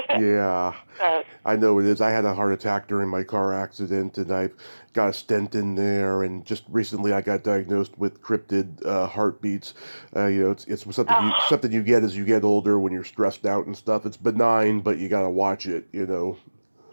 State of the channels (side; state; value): both; inverted; correlation -1.00